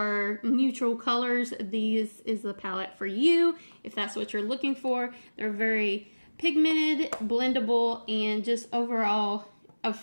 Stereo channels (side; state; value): both; inverted; correlation -1.00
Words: neutral colors. This is the palette for you if that's what you're looking for. They're very pigmented, blendable, and just overall